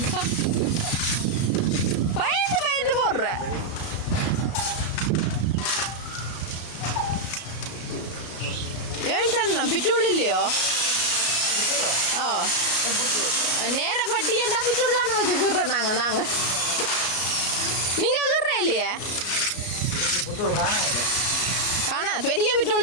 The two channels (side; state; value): right; late; 33 ms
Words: பயந்து பயந்து போடுற. ஏன் சார் நான் பிச்சூள் இல்லையோ? ஆ நேர பட்டி ஏன்டா பிச்சூள்லாம் வச்சு கீறோம் நாங்கள் நீங்கள் கீறே இல்லையே? காணா பெரிய